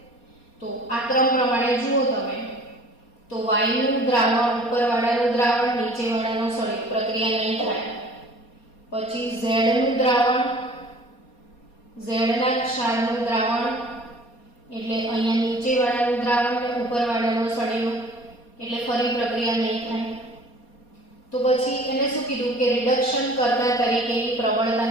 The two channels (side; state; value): right; late; 4.2 ms